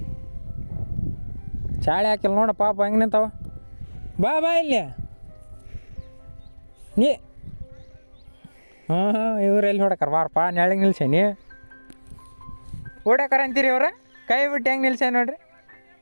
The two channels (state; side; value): inverted; both; correlation -1.00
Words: ಚಾಳೆ ಹಾಕಿಲ್ಲ ನೋಡ ಪಾಪ ಹೆಂಗೆ ನಿಂತಾವ. ಬಾ ಇಲ್ಲಿ ನೀ. ಇವ್ರು ಎಲ್ಲಿ ಹೊಡಕರ ಬಾರಪ್ಪ, ನೆಳಗೆ ನಿಲ್ಸೇನಿ. ಓಡಾಕರ ಅಂತೀರಿ ಅವ್ರ, ಕೈ ಬಿಟ್ಟು ಹೆಂಗೆ ನಿಲ್ಸೇ ನೋಡ್ರಿ.